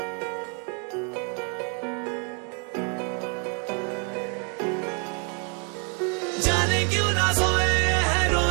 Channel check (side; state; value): left; quieter; 37.9 dB